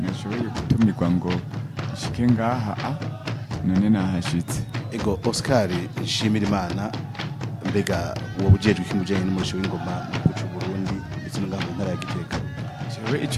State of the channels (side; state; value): both; identical; correlation 1.00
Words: nashoboye gutumirwa ngo nshike ngaha none nahashitse. Ego, Oscar Nshimirimana, mbega wowe ujejwe iki mujanye n'umurisho w'ingoma mu gihugu cy'u Burundi ndetse no mu ntara ya Gitega? Jewe